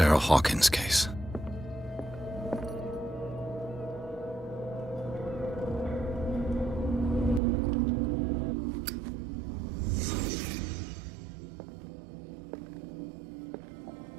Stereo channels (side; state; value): left; drops out; at 7.4 s